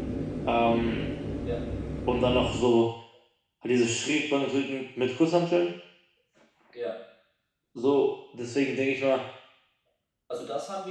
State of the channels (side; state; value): both; identical; correlation 1.00